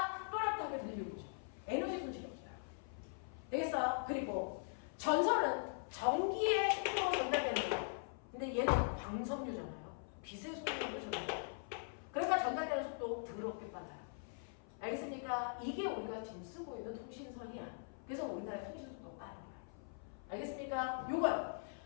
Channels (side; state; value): right; silent; 50 dB below the other